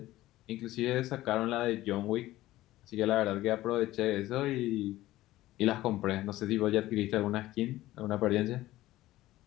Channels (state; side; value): quieter; right; 16.2 dB